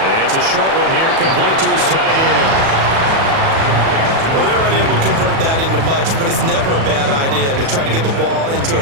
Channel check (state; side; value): late; left; 37 ms